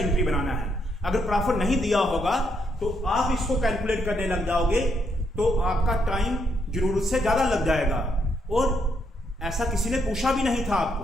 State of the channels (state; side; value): normal; both; correlation 0.76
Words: बनाना है। अगर प्रॉफिट नहीं दिया होगा तो आप इसको कैलकुलेट करने लग जाओगे तो आपका टाइम जरूरत से ज्यादा लग जाएगा, और ऐसा किसी ने पूछा भी नहीं था